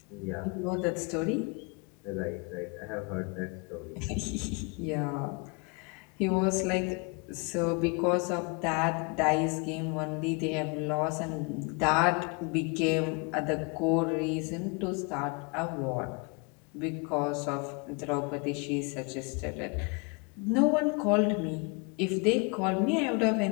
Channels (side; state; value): right; quieter; 32.3 dB